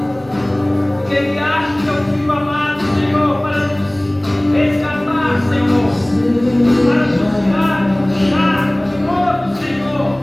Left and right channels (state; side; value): noise; right; hum, 29 dB below the sound